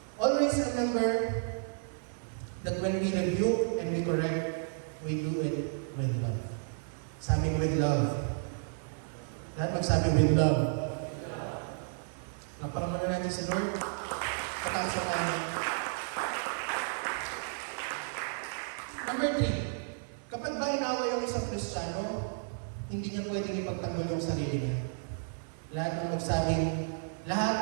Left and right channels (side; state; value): left; silent; 56 dB below the other